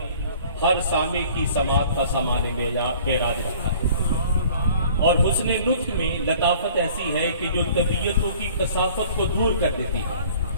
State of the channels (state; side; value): inverted; both; correlation -0.51